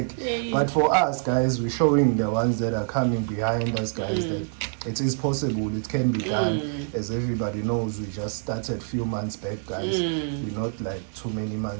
But for us, guys, we're showing the ones that are coming behind us, guys, that it is possible, it can be done. As everybody knows, we just started a few months back, guys. We're not like too many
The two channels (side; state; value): left; silent; 61 dB below the other